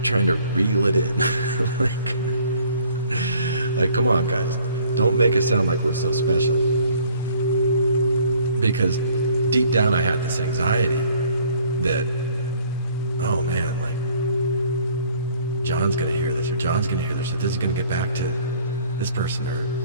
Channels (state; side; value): inverted; both; correlation -0.57